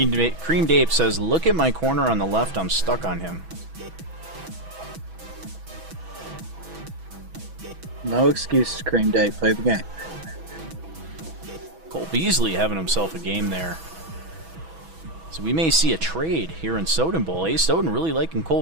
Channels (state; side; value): late; left; 6.1 ms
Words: Ape says, look at my corner on the left, I'm stuck on him. No excuses, Cream Day. Play the game. Cole Beasley having himself a game there. So we may see a trade here in Soden Bowl. Ace Soden really liking Cole